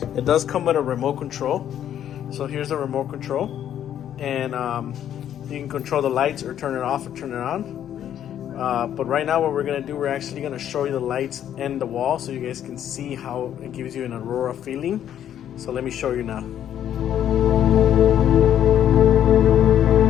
It does come with a remote control. So here's the remote control, and you can control the lights or turn it off or turn it on. But right now what we're gonna do, we're actually gonna show you the lights and the wall so you guys can see how it gives you an aurora feeling. So let me show you now.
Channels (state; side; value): quieter; right; 10.4 dB